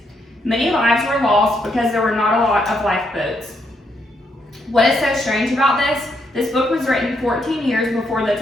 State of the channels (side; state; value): both; normal; correlation 0.76